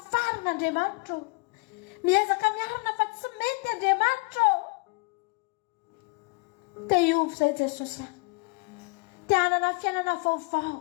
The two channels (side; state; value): right; quieter; 28.7 dB